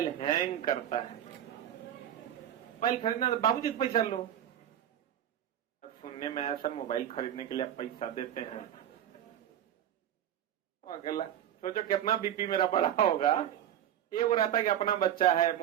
हैंग करता है। मोबाइल खरीदना बाबूजी पैसा लो। सुनने में आया सर मोबाइल खरीदने के लिए आप पैसा देते हैं। अगला सोचो कितना बीपी मेरा बड़ा होगा। ये वो रहता कि अपना बच्चा है,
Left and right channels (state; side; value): quieter; left; 10.7 dB